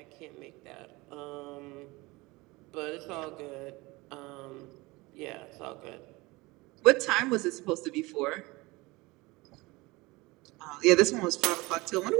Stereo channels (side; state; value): left; quieter; 22.6 dB